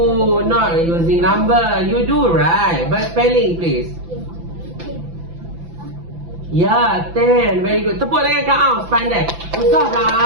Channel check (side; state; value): left; late; 5.9 ms